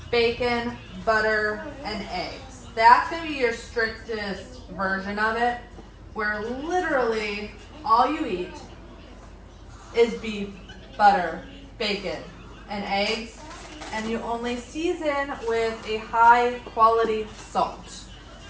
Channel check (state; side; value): identical; both; correlation 1.00